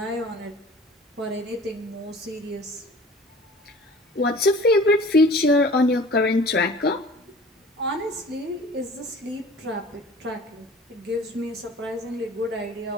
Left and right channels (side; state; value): both; normal; correlation 0.46